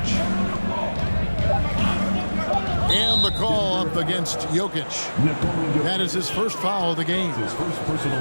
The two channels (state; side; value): inverted; both; correlation -1.00